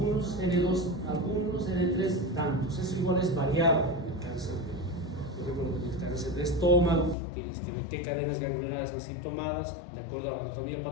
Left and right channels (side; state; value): right; drops out; at 7.2 s